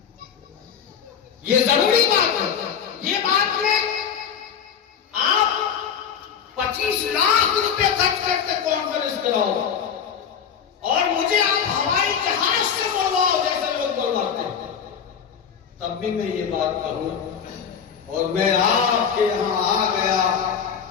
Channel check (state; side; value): quieter; right; 7.6 dB